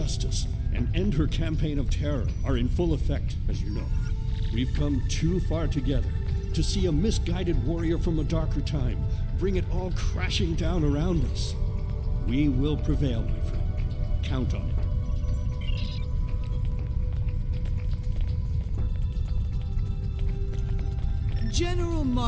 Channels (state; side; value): identical; both; correlation 1.00